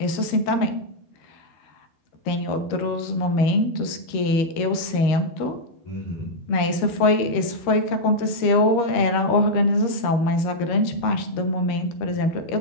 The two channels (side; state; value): right; late; 13 ms